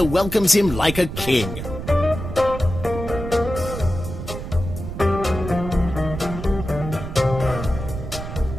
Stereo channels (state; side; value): noise; right; rumble, 8 dB below the sound